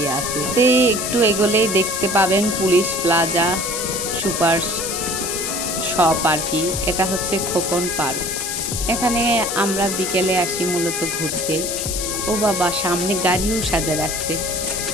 আছে। একটু এগোলেই দেখতে পাবেন পুলিশ প্লাজা সুপার শপ আর কি। এটা হচ্ছে খোকন পার্ক। এখানে আমরা বিকেলে আসি মূলত ঘুরতে। ও বাবা, সামনে গাড়িও সাজা রাখছে।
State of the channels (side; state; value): left; noise; hiss, 3 dB below the sound